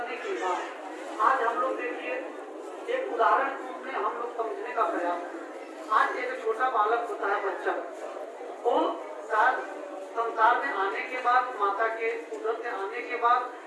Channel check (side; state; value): both; identical; correlation 1.00